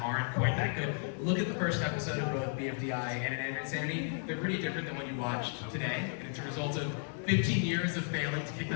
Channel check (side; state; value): right; silent; 55 dB below the other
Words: aren't quite that good. Look at the first episode of both BFDI and Inanimate Insanity. They're pretty different than what you watched today. And it's a result of 15 years of failing to kick